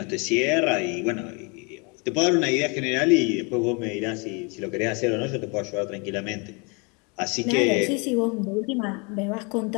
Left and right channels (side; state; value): right; quieter; 31.6 dB